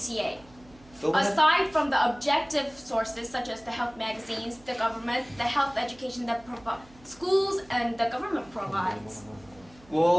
Aside from the objective sources such as the health magazines, the government, the health education that schools and the government provides.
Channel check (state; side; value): noise; right; hum, 25 dB below the sound